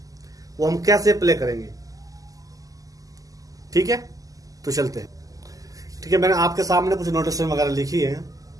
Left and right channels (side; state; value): left; late; 0.17 ms